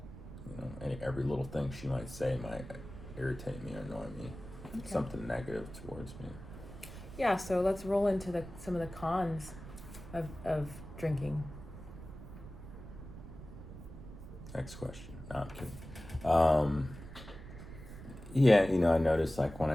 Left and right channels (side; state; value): right; noise; rumble, 13 dB below the sound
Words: every little thing she might say might irritate me or annoy me. Okay. Something negative towards me. Yeah, so let's roll into some of the cons of drinking. Next question. No, I'm kidding. I notice like when